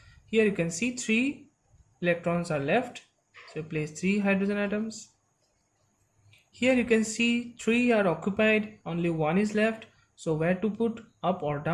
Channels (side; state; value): both; identical; correlation 1.00